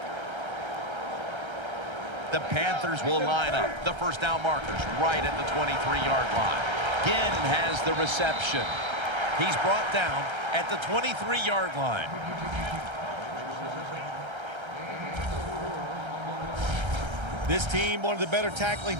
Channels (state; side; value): late; left; 1.3 ms